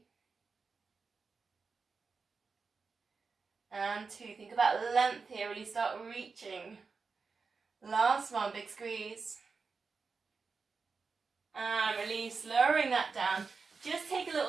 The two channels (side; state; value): left; quieter; 4.7 dB